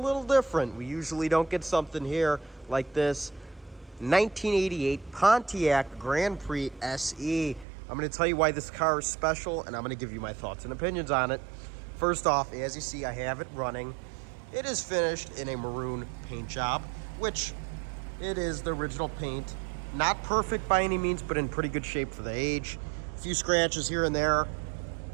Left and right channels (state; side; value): drops out; left; at 7.7 s